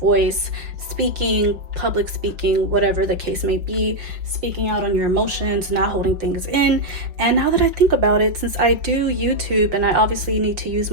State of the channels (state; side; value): late; left; 5.4 ms